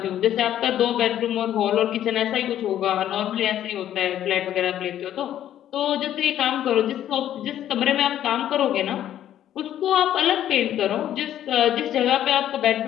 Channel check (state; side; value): quieter; right; 11.4 dB